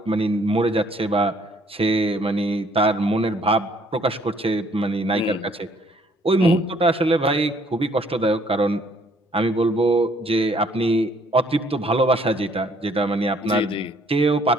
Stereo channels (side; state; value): both; normal; correlation 0.63